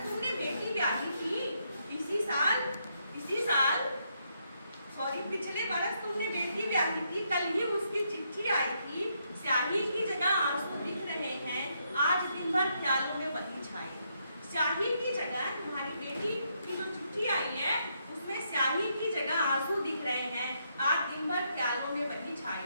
तुमने बेटी ब्याही थी, पिछले बरस तुमने बेटी ब्याही थी, कल ही उसकी चिट्ठी आई थी, स्याही की जगह आंसू दिख रहे हैं, आज दिन भर ख्यालों में वही छाई। स्याही की जगह तुम्हारी बेटी की जो चिट्ठी आई है उसमें स्याही की जगह आंसू दिख रहे हैं, आज दिन भर ख्यालों में वही छाई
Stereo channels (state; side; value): inverted; both; correlation -0.77